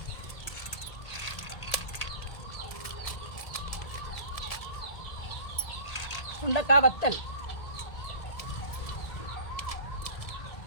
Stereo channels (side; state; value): right; late; 1.8 ms